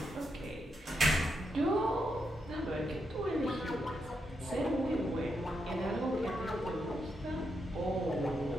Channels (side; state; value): both; normal; correlation 0.82